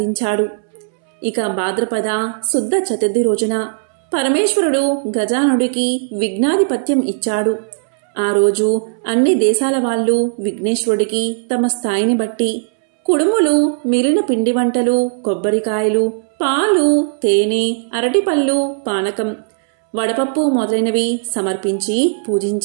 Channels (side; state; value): left; silent; 68 dB below the other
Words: ఇక భాద్రపద శుద్ధ చతుర్థి రోజున పరమేశ్వరుడు గజానుడికి విఘ్నాధిపత్యం ఇచ్చాడు. ఆ రోజు అన్ని దేశాల వాళ్ళు విఘ్నేశ్వరుడికి తమ స్థాయిని బట్టి కుడుములు, మిగిలిన పిండి వంటలు, కొబ్బరికాయలు, పాలు, తేనె, అరటిపళ్ళు, పానకం, వడపప్పు మొదలైనవి సమర్పించి